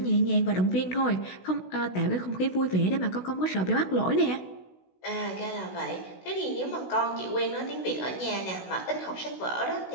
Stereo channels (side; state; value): right; late; 16 ms